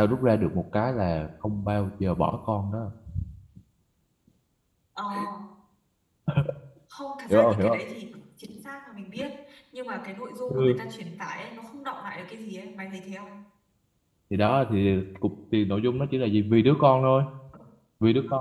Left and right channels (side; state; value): both; identical; correlation 1.00